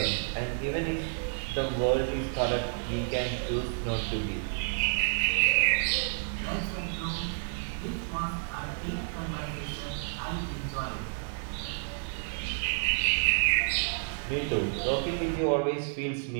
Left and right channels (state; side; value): silent; left; digital silence